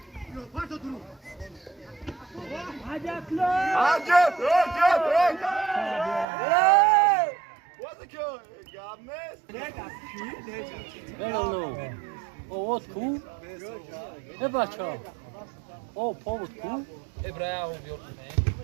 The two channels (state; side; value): drops out; left; at 6.2 s